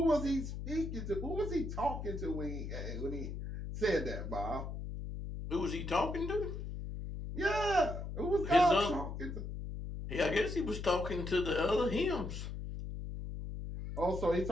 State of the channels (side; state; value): left; noise; hum, 6 dB below the sound